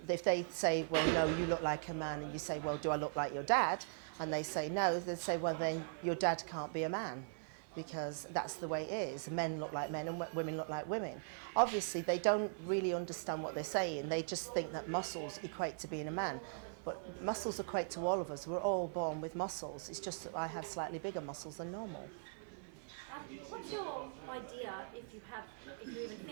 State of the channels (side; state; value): left; silent; 51 dB below the other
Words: say, well, no, you look like a man, and you say, well, do I look like your dad? And they say no, they say, well, then your dad can't be a man. Because that's the way it is. Men look like men and women look like women. Obviously, they don't really understand what they're saying. They just think that muscles equate to being a man. But muscles equate to all of us. We're all born with muscles. It's just that I have slightly bigger muscles than normal. What's your idea, if you even